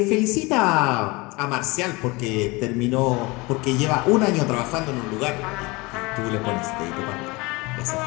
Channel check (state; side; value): quieter; right; 24.6 dB